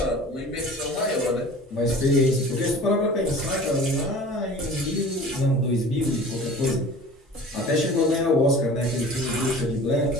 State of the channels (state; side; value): normal; both; correlation 0.42